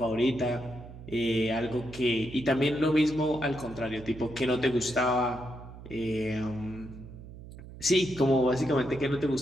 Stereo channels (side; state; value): right; noise; hum, 15 dB below the sound